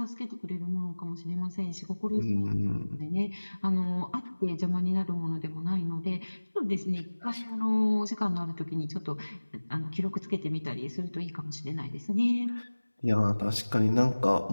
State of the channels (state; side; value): inverted; both; correlation -1.00